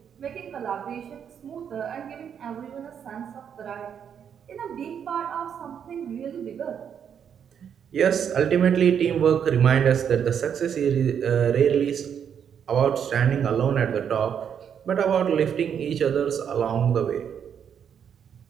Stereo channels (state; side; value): quieter; left; 8.1 dB